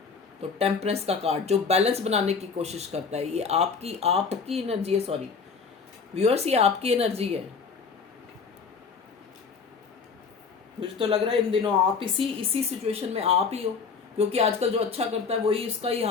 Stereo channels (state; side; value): quieter; right; 5.3 dB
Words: तो टेम्परेंस का कार्ड जो बैलेंस बनाने की कोशिश करता है, ये आपकी आपकी एनर्जी है, सॉरी व्यूअर्स, ये आपकी एनर्जी है। मुझे तो लग रहा है इन दिनों आप इसी सिचुएशन में आप ही हो, क्योंकि आजकल जो अच्छा करता है वही इसका ही